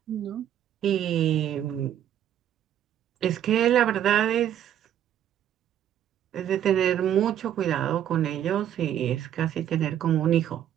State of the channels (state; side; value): quieter; left; 10.5 dB